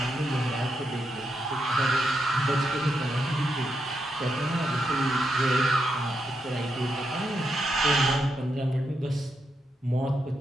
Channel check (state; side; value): normal; both; correlation 0.82